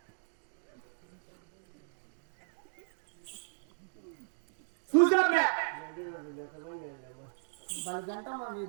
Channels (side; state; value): left; silent; digital silence